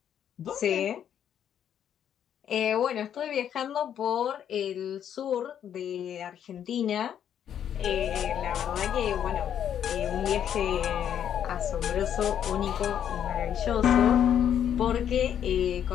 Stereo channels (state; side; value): quieter; right; 9.4 dB